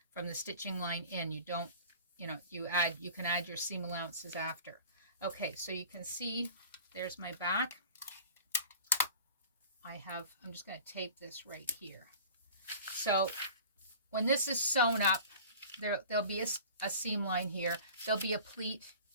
From the stitching line in, you don't, you can add your seam allowances after. Okay, so you can see there's my back. I'm just going to tape this right here. So when this is sewn up, there'll be a seam line here. There'll be a pleat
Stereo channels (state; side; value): inverted; both; correlation -0.42